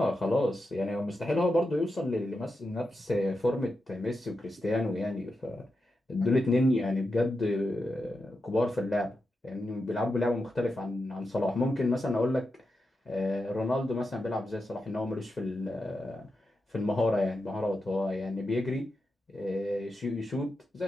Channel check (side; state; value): both; normal; correlation 0.88